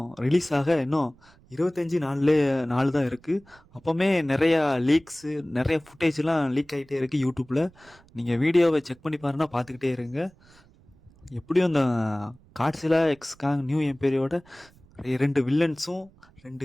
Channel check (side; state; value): right; noise; rumble, 28 dB below the sound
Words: ரிலீஸ் ஆக இன்னும் 25 நாள் தான் இருக்குது. அப்போவுமே நிறையா லீக்ஸு நிறைய ஃபுட்டேஜ்லாம் லீக் ஆகிட்டே இருக்குது யூடியூப்பில். நீங்கள் வீடியோவை செக் பண்ணி பாருன்னா பார்த்துக்கிட்டே இருங்க. எப்படியும் இந்த காட்ஸிலா எக்ஸ் காங் நியூ எம்பையரோட 2 வில்லன்ஸும்